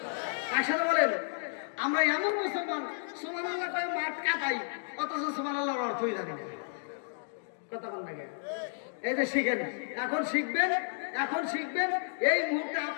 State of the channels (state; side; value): silent; right; digital silence